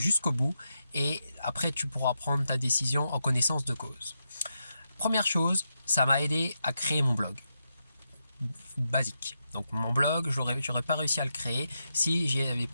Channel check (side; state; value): both; inverted; correlation -0.84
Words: jusqu'au bout et après tu pourras prendre ta décision en connaissance de cause. Première chose, ça m'a aidé à créer mon blog. Basique. Donc mon blog, j'aurais pas réussi à le créer si je n'avais